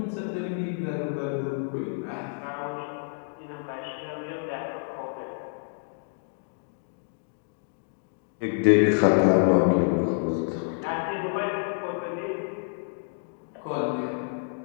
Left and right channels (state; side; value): silent; right; digital silence